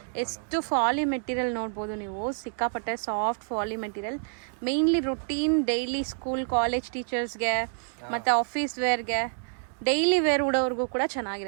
ಎಷ್ಟು ಫಾಲಿ ಮೆಟೀರಿಯಲ್ ನೋಡ್ಬೋದು ನೀವು. ಸಿಕ್ಕಾಪಟ್ಟೆ ಸಾಫ್ಟ್ ಫಾಲಿ material. Mainly routine daily school college ಟೀಚರ್ಸ್ಗೆ ಮತ್ತೆ ಆಫೀಸ್ ವೇರ್ಗೆ, ಡೈಲಿ ವೇರ್ ಉಡೋರ್ಗೂ ಕೂಡ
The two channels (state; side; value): silent; left; digital silence